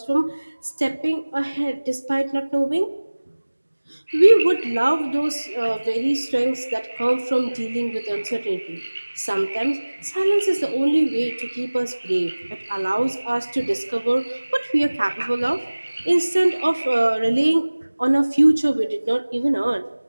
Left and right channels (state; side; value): inverted; both; correlation -1.00